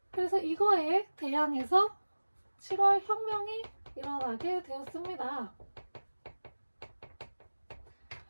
그래서 이거에 대항해서 7월 혁명이 일어나게 되었습니다.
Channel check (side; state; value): both; inverted; correlation -1.00